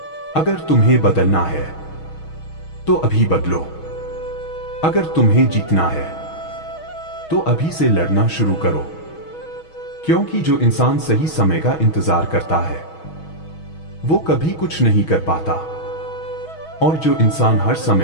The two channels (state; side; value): late; right; 6.3 ms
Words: अगर तुम्हें बदलना है तो अभी बदलो। अगर तुम्हें जीतना है तो अभी से लड़ना शुरू करो। क्योंकि जो इंसान सही समय का इंतजार करता है वो कभी कुछ नहीं कर पाता, और जो इंसान हर